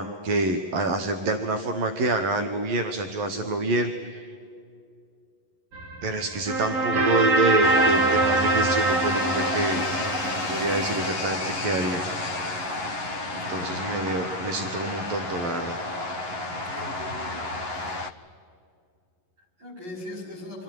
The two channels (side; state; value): left; late; 11 ms